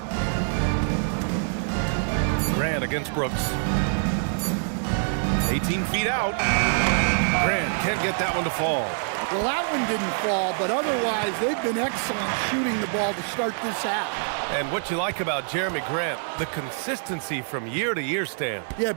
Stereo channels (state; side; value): silent; left; 59 dB below the other